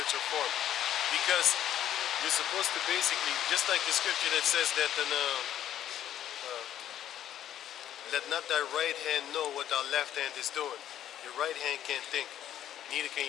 form. Because you're supposed to basically, just like the scripture that says that let not thy right hand know what thy left hand is doing. Your right hand can't think, neither can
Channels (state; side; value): quieter; right; 11.2 dB